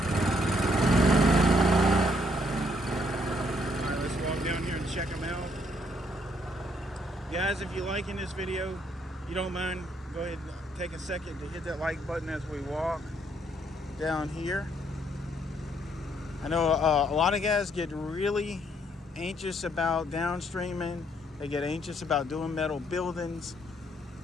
All right, let's walk down here and check them out. Guys, if you're liking this video, you don't mind, go ahead and take a second to hit that like button as we walk down here. I know a lot of guys get really anxious about downstreaming. They get anxious about doing metal buildings.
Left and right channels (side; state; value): both; normal; correlation 0.69